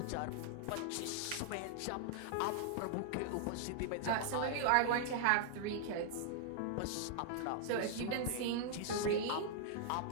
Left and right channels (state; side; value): different; both; correlation -0.01